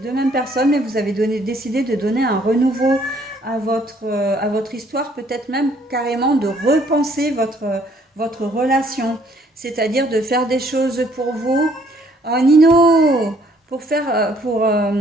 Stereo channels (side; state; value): both; normal; correlation 0.63